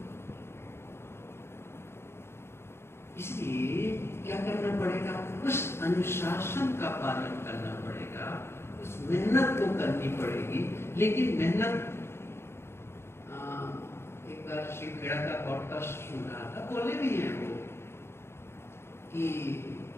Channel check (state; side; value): late; right; 0.12 ms